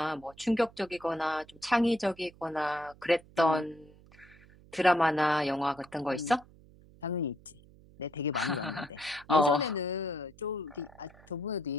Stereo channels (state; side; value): noise; right; hum, 24 dB below the sound